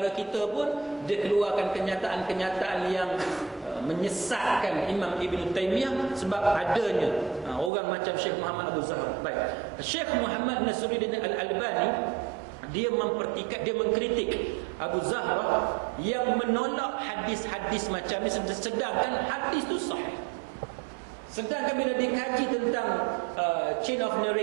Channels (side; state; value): left; drops out; at 7.7 s